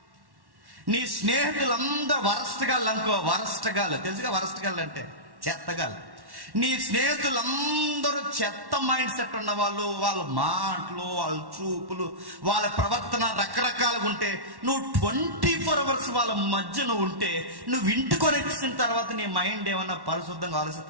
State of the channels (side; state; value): left; late; 1.1 ms